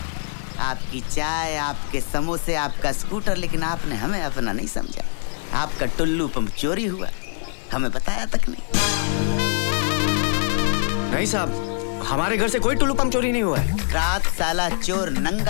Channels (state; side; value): silent; right; 63 dB below the other